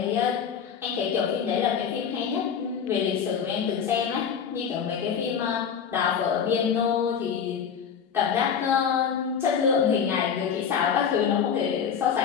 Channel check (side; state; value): right; quieter; 7.4 dB